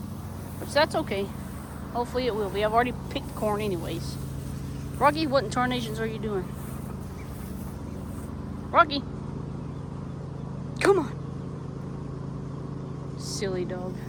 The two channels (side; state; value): both; identical; correlation 1.00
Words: Which that's okay. Hopefully it will be. I've already picked corn anyways. Rocky, what in tarnations are you doing? Rocky. Come on. Silly dog.